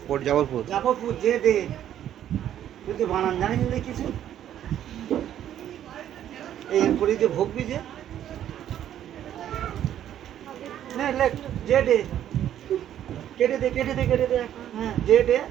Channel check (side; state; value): left; quieter; 10.9 dB